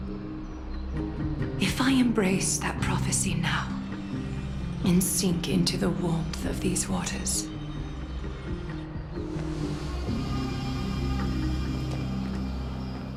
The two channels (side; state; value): both; identical; correlation 1.00